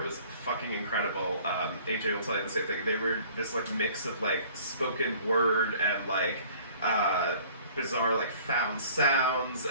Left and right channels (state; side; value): inverted; both; correlation -0.52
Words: was fucking incredible. AJ will tell you the same thing. They were this like mix of like spoken word and like bizarre like found sounds,